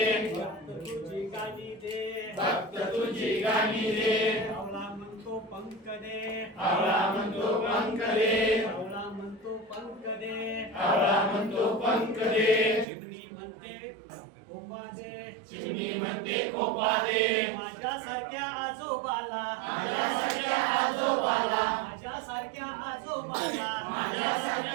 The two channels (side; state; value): left; drops out; at 12.9 s